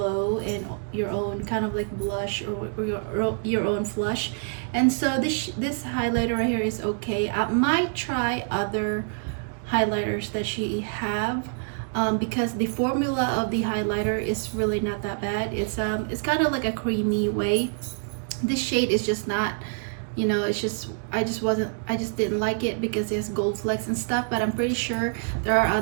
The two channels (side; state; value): left; silent; 61 dB below the other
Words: and your own kind of like blush or your own flush. And so this highlighter right here is okay. I might try other highlighters that she have, because the formula of the highlighter is really not that bad. It's kind of like a creamy way. This shade is just not, you know, it's just, I just didn't like it because it has gold flecks and stuff. But I'm pretty sure there are